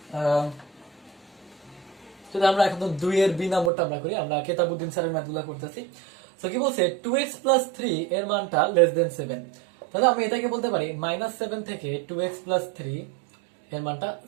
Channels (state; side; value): drops out; left; at 3.7 s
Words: যদি আমরা এখন দুই এর বি নাম্বারটা আমরা করি, আমরা কেতাবুদ্দিন স্যারের ম্যাথগুলো করতেছি। তো কি বলছে, টু এক্স প্লাস থ্রি এর মানটা লেস দেন সেভেন। তাহলে আমি এটাকে বলতে পারি মাইনাস সেভেন থেকে টু এক্স প্লাস থ্রি এর মানটা